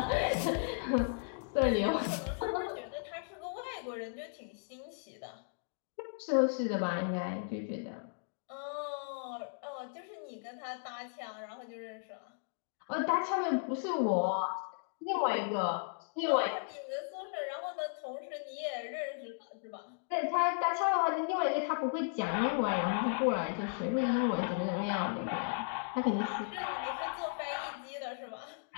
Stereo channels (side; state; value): right; silent; digital silence